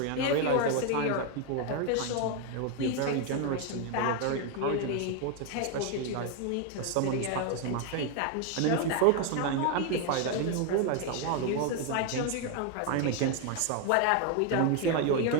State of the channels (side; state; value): both; different; correlation 0.01